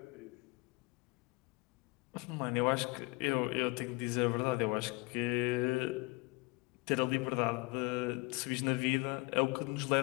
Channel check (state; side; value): quieter; right; 26.4 dB